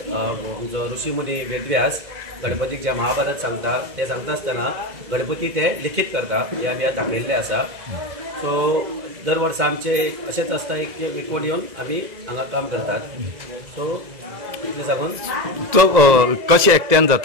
आमचो ऋषीमुनी वेदव्यास गणपतीक जे महाभारत सांगता ते सांगता आसतना गणपती ते लिखीत करता हे आमी दाखयल्ले आसा. सो दर वर्सा आमचे अशेंच आसता एक एकवट येवन आमी हांगा काम करतात. सो इतलें सांगून तो कशें एकट्यान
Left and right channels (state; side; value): late; left; 2.0 ms